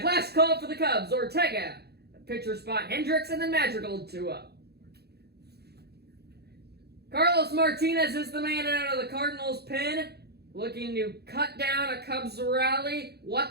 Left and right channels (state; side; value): late; left; 0.47 ms